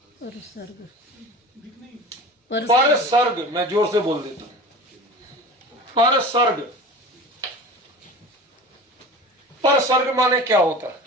पर सर्ग, मैं जोर से बोल देता हूं, पर सर्ग। पर सर्ग माने क्या होता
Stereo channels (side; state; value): both; normal; correlation 0.36